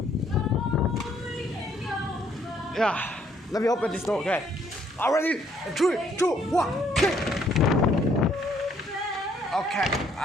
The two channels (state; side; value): normal; both; correlation 0.67